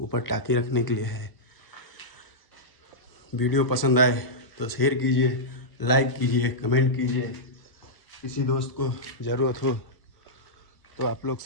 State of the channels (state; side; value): late; right; 1.0 ms